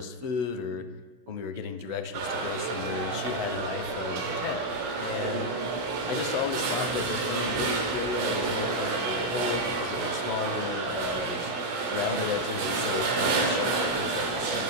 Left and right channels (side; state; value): left; late; 16 ms